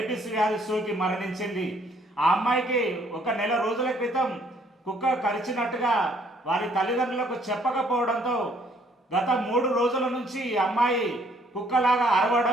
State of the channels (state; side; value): normal; both; correlation 0.64